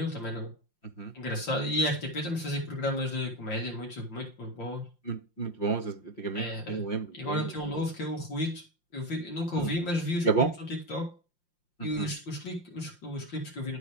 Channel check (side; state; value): right; late; 5.7 ms